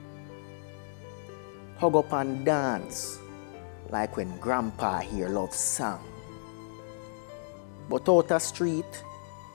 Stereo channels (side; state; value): right; silent; digital silence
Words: Hug up and dance like when grandpa hear love song. But out the street,